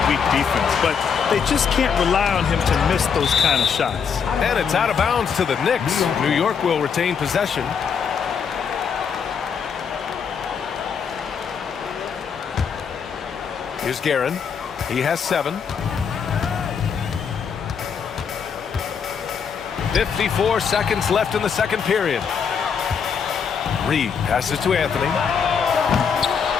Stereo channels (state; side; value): quieter; right; 6.7 dB